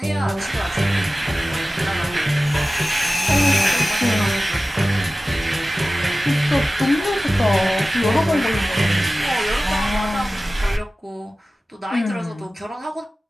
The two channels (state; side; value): normal; both; correlation 0.96